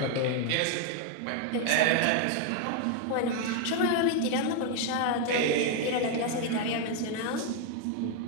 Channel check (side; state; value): both; different; correlation 0.01